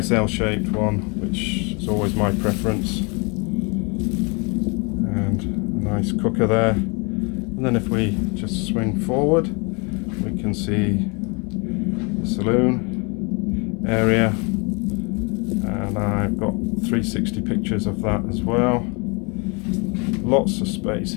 L-shaped one, which is always my preference, and a nice cooker there. And then if we just swing forward, we can see the saloon area, and I've got 360 pictures of that as well. Lots of space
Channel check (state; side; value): quieter; right; 31.6 dB